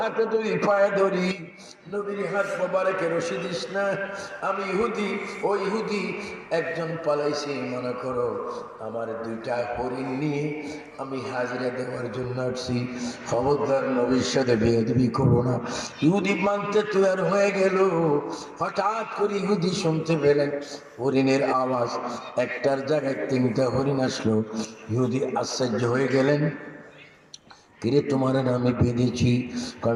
ধরি, পায়ে ধরি, নবীর হাত মোবারকে রশি দিস না। আমি ইহুদি, ও ইহুদি একজন পালাইছি, মনে করো আমার দুইটা হরিণ নিয়ে আমি হাজিরা দেওয়ার জন্য আসছি, খবরদার নবীর সাথে বেয়াদবি করো না। ইহুদি মানতে তৈরি হয়ে গেল। হঠাৎ করে ইহুদি শুনতে পেলেন হরিণের আওয়াজ, একটার জায়গায় তিনটা হরিণ আসলো। ইহুদি আশ্চর্য হয়ে গেলেন, কিরে তোমার আমি বেঁধেছি,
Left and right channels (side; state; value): both; identical; correlation 1.00